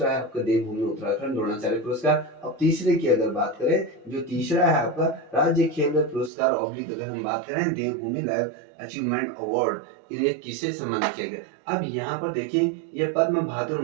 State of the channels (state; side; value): drops out; left; at 6.3 s